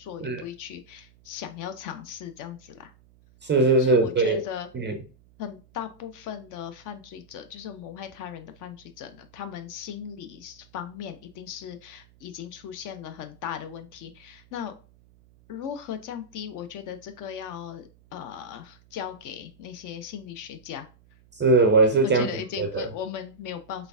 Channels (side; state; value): right; noise; hum, 27 dB below the sound